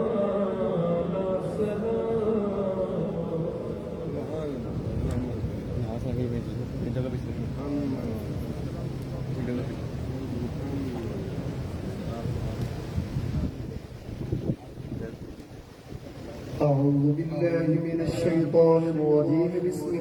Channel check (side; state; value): both; identical; correlation 1.00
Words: أعوذ بالله من الشيطان الرجيم بسم